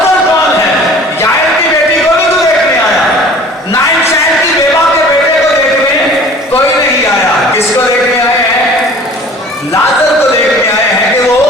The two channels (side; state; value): both; normal; correlation 0.47